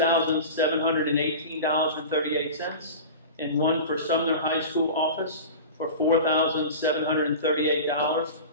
and one for Sumner High School office for $4,738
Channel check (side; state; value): both; inverted; correlation -0.32